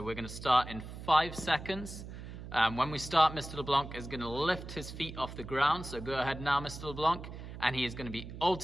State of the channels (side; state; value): right; noise; hum, 11 dB below the sound